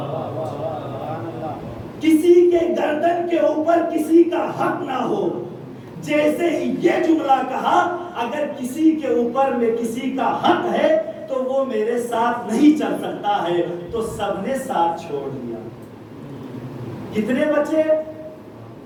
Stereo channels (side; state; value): both; identical; correlation 1.00